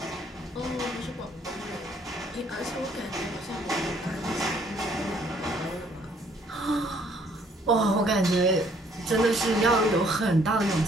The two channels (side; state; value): both; normal; correlation 0.63